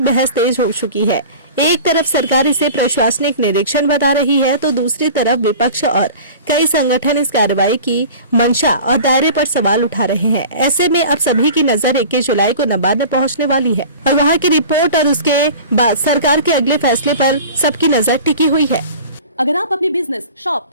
बहस तेज हो चुकी है। एक तरफ सरकार इसे प्रशासनिक निरीक्षण बता रही है तो दूसरी तरफ विपक्ष और कई संगठन इस कार्रवाई की मंशा और दायरे पर सवाल उठा रहे हैं। ऐसे में अब सभी की नजर 21 जुलाई को नबार्ड में पहुंचने वाली है और वहां की रिपोर्ट और उसके बाद सरकार के अगले फैसले पर सबकी नजर टिकी हुई है। अगर आप अपने बिजनेस, शॉप,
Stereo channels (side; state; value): both; inverted; correlation -0.39